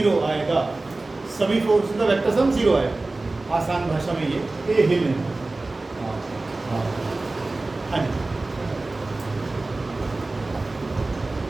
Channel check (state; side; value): quieter; left; 3.1 dB